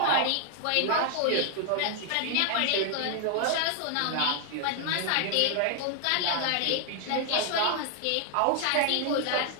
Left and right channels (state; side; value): different; both; correlation 0.00